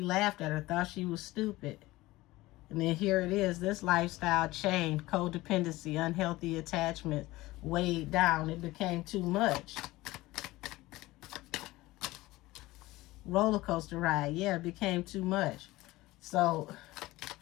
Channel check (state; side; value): quieter; right; 18.8 dB